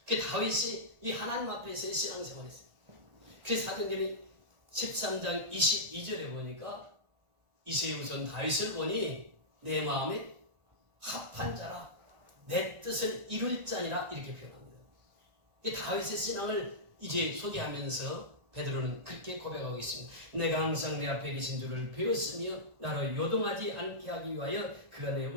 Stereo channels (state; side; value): late; left; 1.4 ms